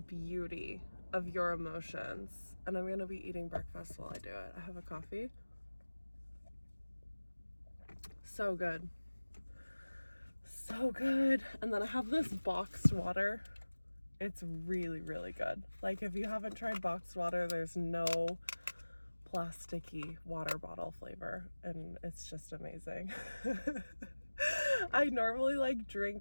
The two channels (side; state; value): both; inverted; correlation -1.00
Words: beauty of your emotions. And I'm going to be eating breakfast while I do it. I have a coffee. So good. So good. And then I have this boxed water. It's really, really good. Like, if you haven't tried boxed water, there's no plasticky water bottle flavor. And it's just amazing. I normally